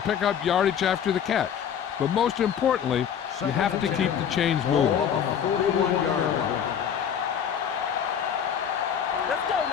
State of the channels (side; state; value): right; quieter; 8.4 dB